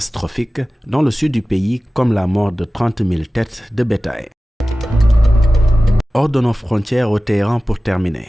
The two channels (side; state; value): both; normal; correlation 0.96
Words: dans le sud du pays, comme la mort de 30 000 têtes de bétail. Hors de nos frontières au Téhéran pour